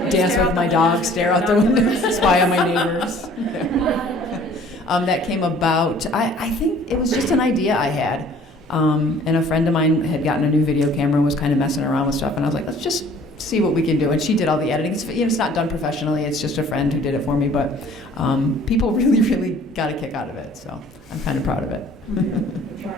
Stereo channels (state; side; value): normal; both; correlation 0.53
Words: dance with my dog, stare out the window, spy on my neighbors. That came about, I think it was just an idea I had, and a friend of mine had gotten a new video camera and was kind of messing around with stuff, and I was like, let's just see what we can do. And she did all the editing. It's not done professionally. It's just a friend who did it for me. But people really, really got a kick out of it. So I'm kind of proud of it.